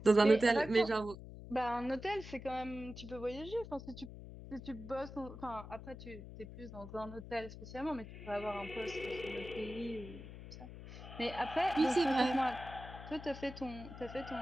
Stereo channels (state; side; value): noise; left; hum, 13 dB below the sound